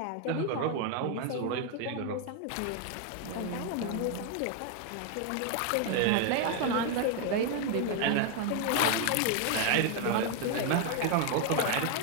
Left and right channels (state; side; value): different; both; correlation 0.00